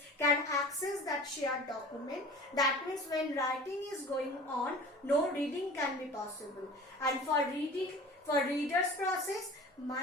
can access that shared document. That means when writing is going on, no reading can be possible. And for reader's process,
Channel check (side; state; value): both; normal; correlation 0.41